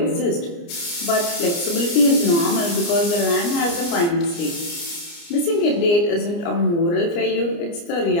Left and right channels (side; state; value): right; late; 29 ms